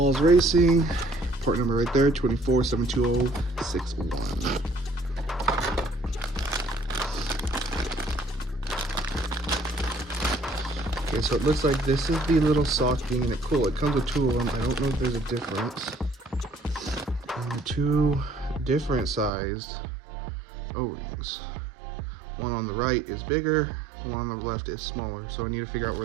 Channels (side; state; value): left; drops out; at 19.3 s